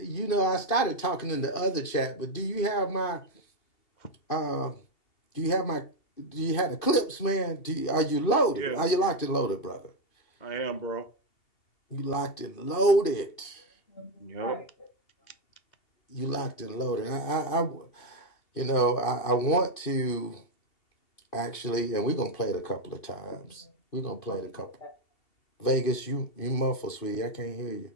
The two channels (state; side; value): late; right; 2.7 ms